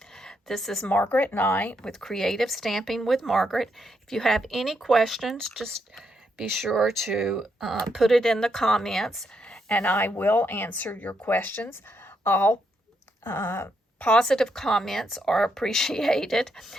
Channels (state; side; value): normal; both; correlation 0.78